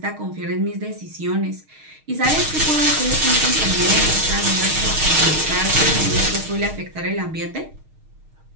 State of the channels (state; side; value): late; left; 6.4 ms